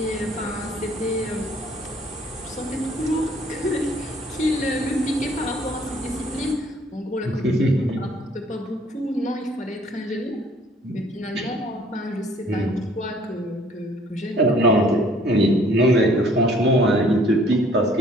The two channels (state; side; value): normal; both; correlation 0.58